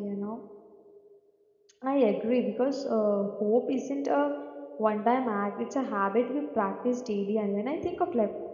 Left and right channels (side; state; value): both; identical; correlation 1.00